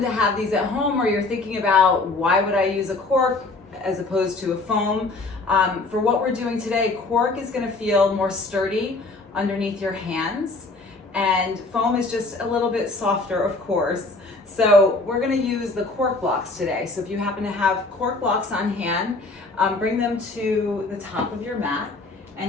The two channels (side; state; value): right; quieter; 3.4 dB